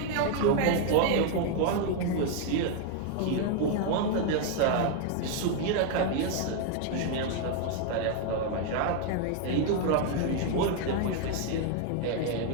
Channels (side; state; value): both; different; correlation 0.00